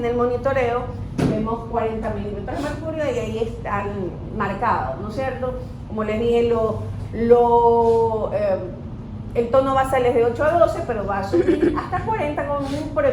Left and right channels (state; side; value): identical; both; correlation 1.00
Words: el monitoreo, vemos 40 milímetros de mercurio y ahí están marcados, ¿no es cierto? Como les dije, el tono basal es de 8 a 12, pero va a subir hasta 40,